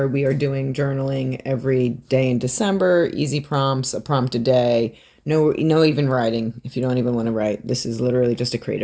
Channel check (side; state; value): both; identical; correlation 1.00